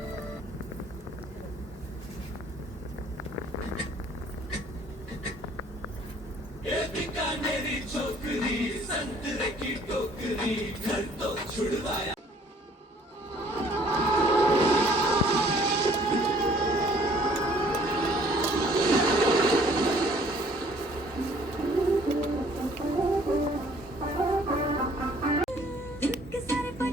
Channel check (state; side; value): normal; both; correlation 0.58